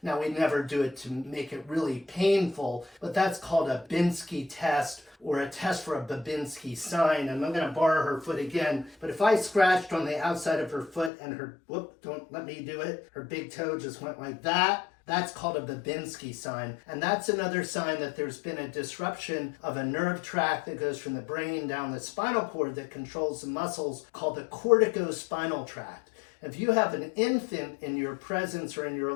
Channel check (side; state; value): right; drops out; at 11.1 s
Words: Now, we never do it to make it really painful, but that's called a Binsky test, or a test for a Babinski sign. And I'm going to borrow her foot again. But if I scratched on the outside of her foot and her, whoop, don't let me do it, her big toe just went like that, that's called a Babinski sign. And that's another sign that there's been a disruption of a nerve tract that goes from the brain down the spinal cord that controls the muscles, called the corticospinal tract. If you have an infant in your presence or in your